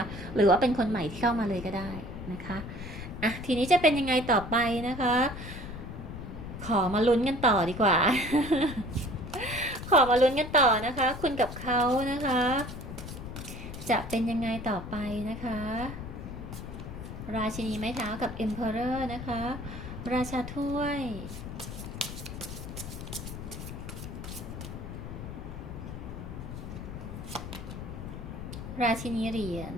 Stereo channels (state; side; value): noise; left; rumble, 9 dB below the sound